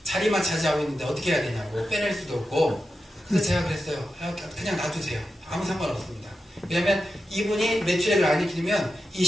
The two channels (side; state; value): both; normal; correlation 0.90